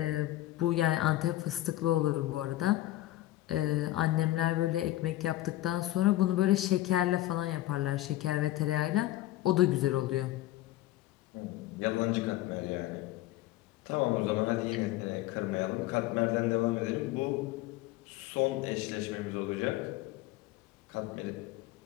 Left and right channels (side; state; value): right; quieter; 15.7 dB